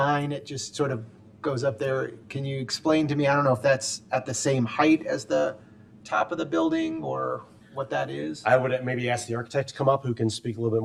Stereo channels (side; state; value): both; identical; correlation 1.00